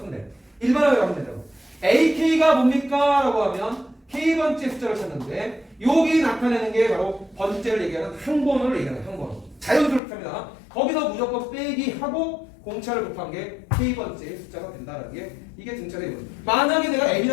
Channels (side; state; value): right; drops out; at 10.0 s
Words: 돼. 일반항이라고 하면 된다고. AK가 뭡니까? 라고 하면 K번째 숫자를 찾는데 여기 나타내는 게 바로 번째를 얘기하는 항번호를 얘기하는 항번호. 자연스럽게 합니다. 거기서 무조건 빼기 하고 공차를 곱한 게 K번째 숫자가 된다는 게 이게 등차의 이론. 만약에 내가